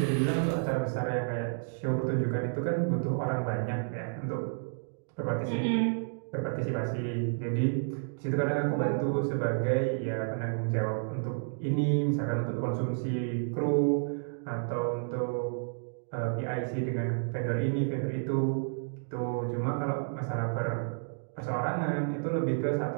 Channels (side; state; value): left; silent; digital silence